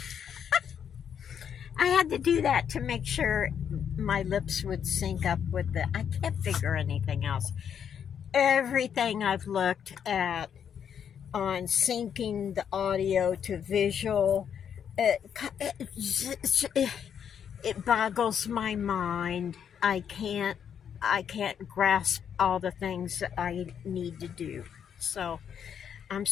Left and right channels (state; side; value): quieter; right; 8.2 dB